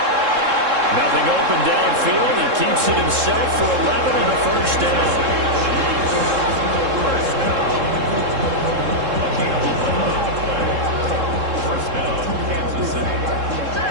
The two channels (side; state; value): left; late; 3.7 ms